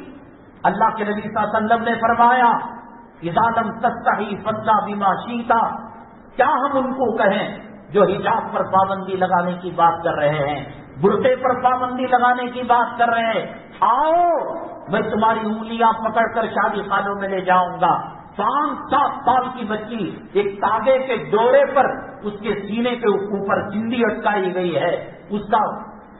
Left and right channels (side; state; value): both; identical; correlation 1.00